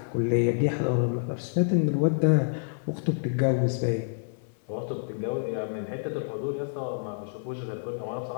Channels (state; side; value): silent; right; 57 dB below the other